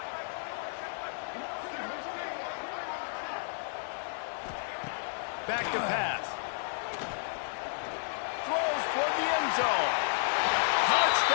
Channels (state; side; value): silent; right; 56 dB below the other